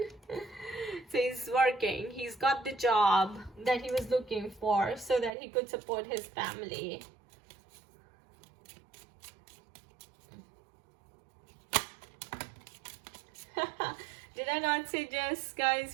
So he's working, he's got the job that he was looking for so that he could support his family. Did I not say just,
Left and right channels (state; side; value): drops out; left; at 5.4 s